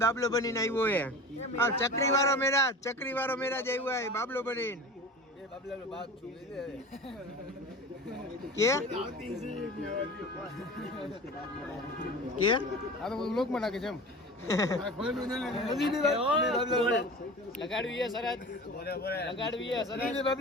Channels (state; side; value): normal; both; correlation 0.36